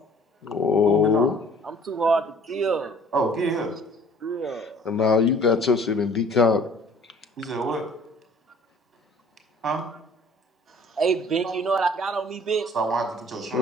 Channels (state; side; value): normal; both; correlation 0.53